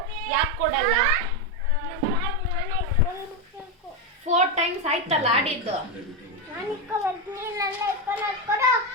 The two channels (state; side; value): normal; both; correlation 0.08